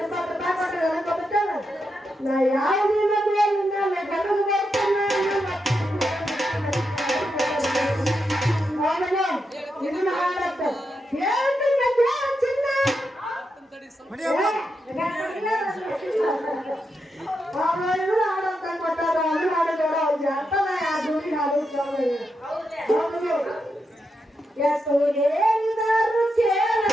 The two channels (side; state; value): both; normal; correlation 0.85